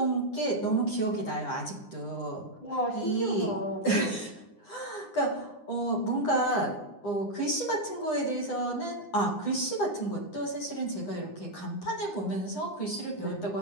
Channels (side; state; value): right; late; 9.8 ms